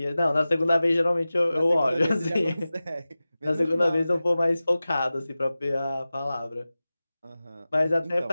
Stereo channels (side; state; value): both; inverted; correlation -0.96